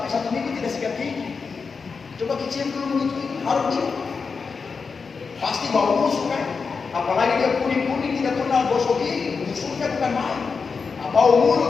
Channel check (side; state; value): right; quieter; 5.1 dB